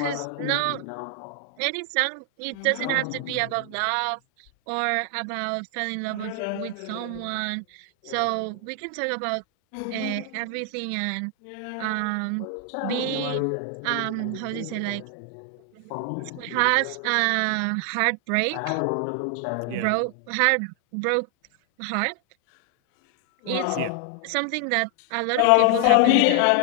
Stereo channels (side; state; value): both; different; correlation 0.00